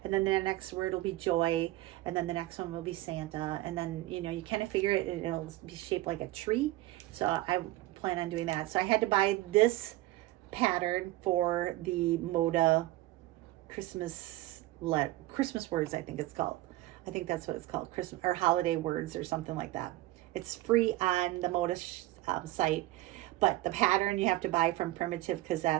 and then the next word will be joy, and then the next one will be Santa, and then, you know, you kind of figure it, and it'll be shaped like a tree. So I plan on doing that. So I had to buy this pattern for the Moda Christmas Words, I think it's called. I think that's what it's called, Christmas or holiday words or something like that. It's free on the Moda site, but the pattern you have to buy from Primitive, because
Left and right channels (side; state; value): left; quieter; 17.5 dB